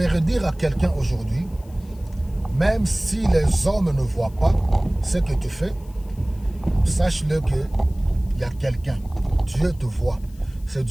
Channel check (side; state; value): left; noise; hiss, 28 dB below the sound